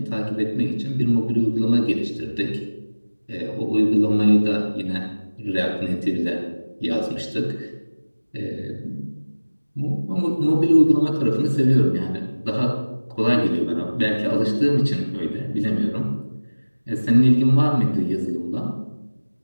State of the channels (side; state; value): both; inverted; correlation -1.00